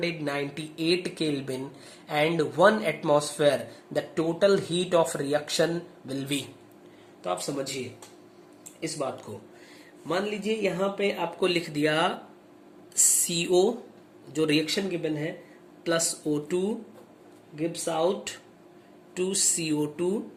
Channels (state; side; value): identical; both; correlation 1.00